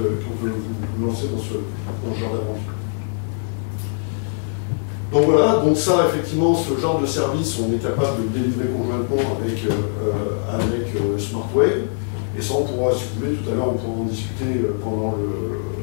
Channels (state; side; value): silent; right; 64 dB below the other